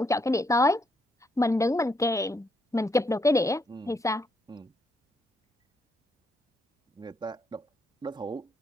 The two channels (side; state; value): both; normal; correlation 0.75